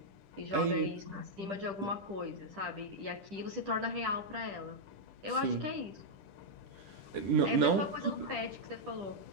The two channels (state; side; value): late; left; 10 ms